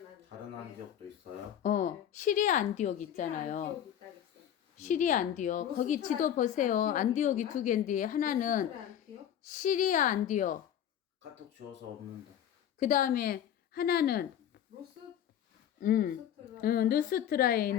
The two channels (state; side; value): quieter; right; 10.1 dB